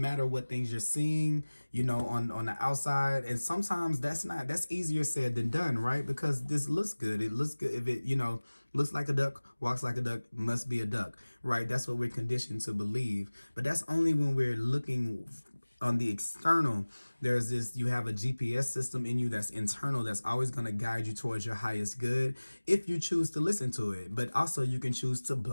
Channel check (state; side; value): inverted; both; correlation -1.00